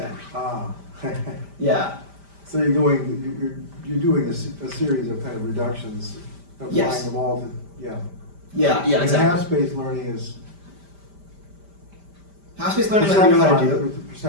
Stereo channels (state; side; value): late; left; 5.1 ms